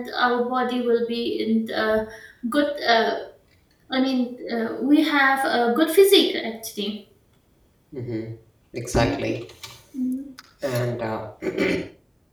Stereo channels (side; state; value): both; identical; correlation 1.00